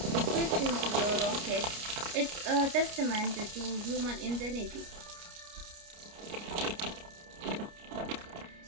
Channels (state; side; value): late; left; 29 ms